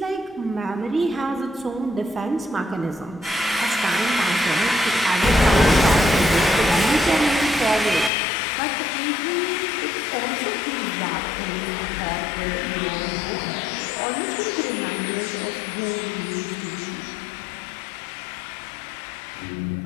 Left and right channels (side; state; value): right; drops out; at 8.1 s